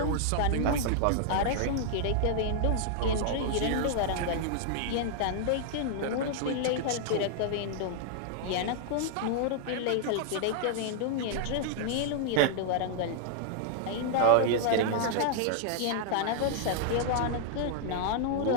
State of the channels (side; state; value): both; different; correlation -0.01